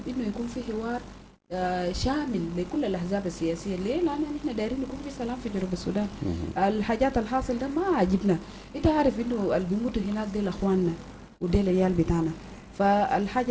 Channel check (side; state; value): both; identical; correlation 1.00